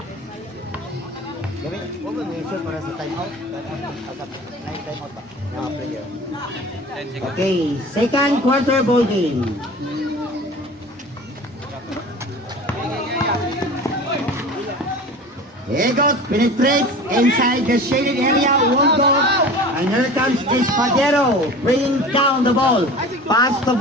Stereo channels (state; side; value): normal; both; correlation 0.38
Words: Okay, second quarter ball game. Egot penetrates inside the shaded area, won't go, and here comes Espadero, bringing down the ball. Pass to